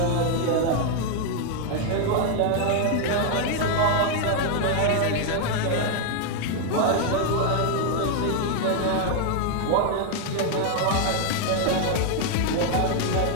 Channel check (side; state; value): both; different; correlation 0.00